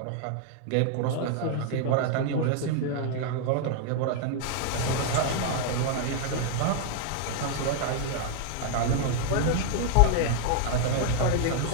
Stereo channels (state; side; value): different; both; correlation -0.01